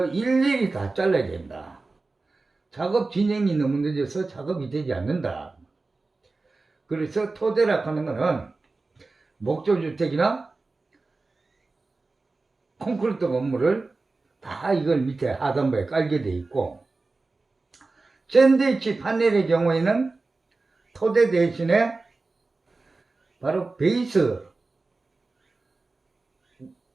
일일이 다 잘라야 된다. 작업 진행이 너무 늦어서 작업이 되지 않는다. 그래서 토대라 하는 거는 목조주택이나 콘크리트 건물을 다 이걸 밑에 하단부에 깔게 돼 있고 샌드위치 파넬의 경우에는 토대 대신에 바로 베이스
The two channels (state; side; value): quieter; left; 3.6 dB